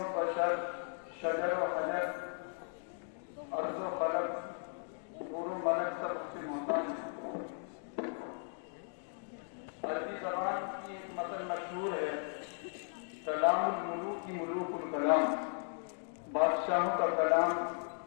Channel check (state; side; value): silent; right; 53 dB below the other